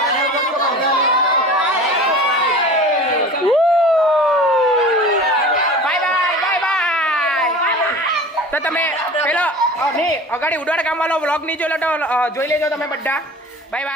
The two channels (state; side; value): normal; both; correlation 0.38